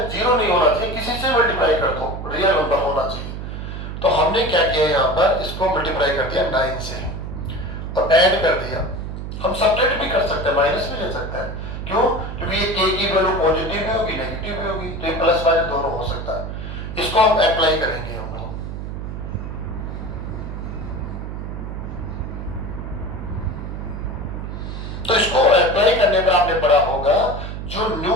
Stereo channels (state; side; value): noise; right; hum, 7 dB below the sound